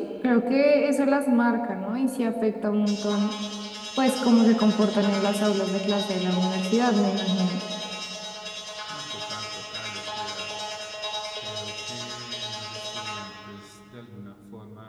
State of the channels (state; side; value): identical; both; correlation 1.00